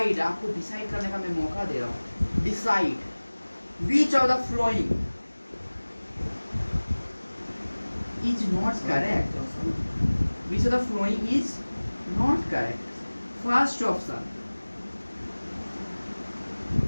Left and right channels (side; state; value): both; inverted; correlation -1.00